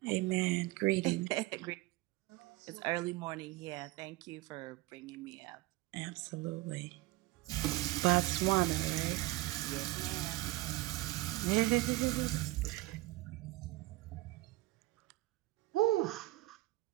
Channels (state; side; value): quieter; left; 19.4 dB